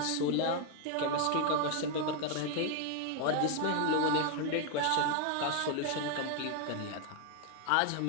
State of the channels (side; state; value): both; different; correlation 0.01